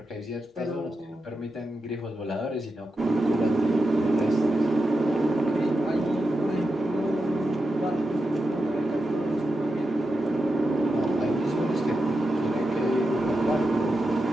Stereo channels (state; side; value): normal; both; correlation 0.89